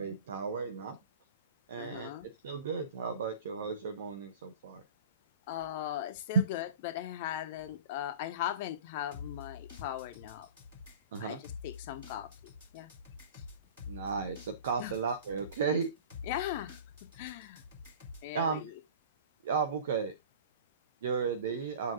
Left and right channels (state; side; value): inverted; both; correlation -0.38